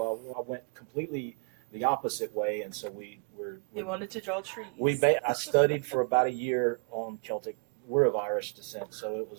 I went completely the opposite way, and so he wanted to draw trees. I studied for about a year on Celtic. We're of Irish descent, so it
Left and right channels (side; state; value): left; quieter; 38.1 dB